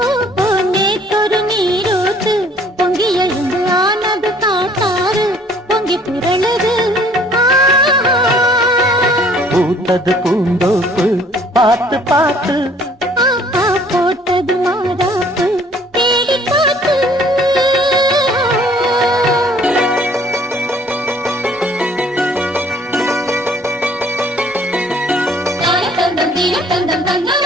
நேற்றொரு நீரூத்து பொங்கி எழுந்து ஆனது காட்டாறு பொங்கி புரளது பூத்தது பூந்தோப்பு பார்த்து பார்த்து போட்டது மாறாப்பு தேடி பார்த்து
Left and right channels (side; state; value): both; normal; correlation 0.57